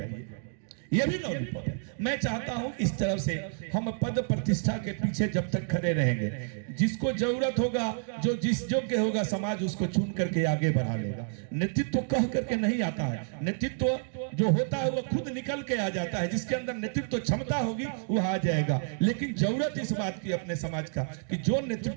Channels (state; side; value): silent; left; digital silence